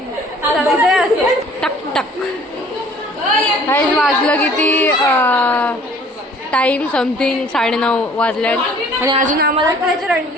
असो टक टक. गाईज वाजलं किती टाइम समथिंग 9:30 वाजल्यात आणि अजून आम्हाला ट्रेजर हंट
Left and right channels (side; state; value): both; normal; correlation 0.54